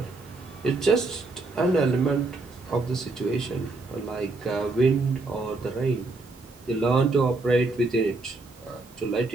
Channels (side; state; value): left; quieter; 3.4 dB